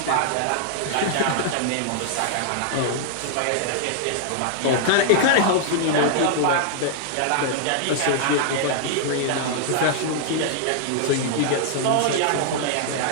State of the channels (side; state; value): both; different; correlation -0.01